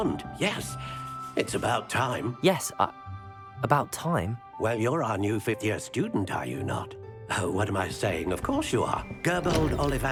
yes. It's about time. Yes, about time? Well, you're our new 5th-year student, are you not? Oh, what am I saying? Of course you are. Gerbold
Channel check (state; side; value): identical; both; correlation 1.00